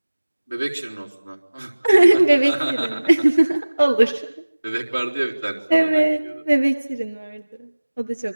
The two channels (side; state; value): both; inverted; correlation -1.00